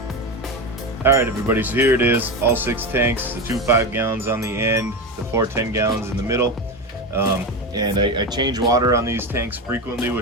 All right, everybody, so here it is, all 6 tanks, the 2 5-gallons on the end, the 4 10-gallons in the middle. And I change water on these tanks frequently,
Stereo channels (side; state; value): both; normal; correlation 0.19